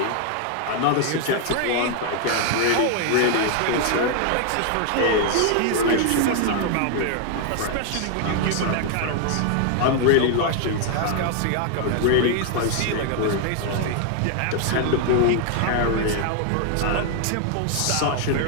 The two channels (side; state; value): both; different; correlation 0.00